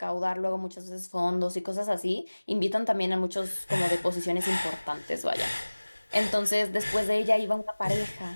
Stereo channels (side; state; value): both; inverted; correlation -1.00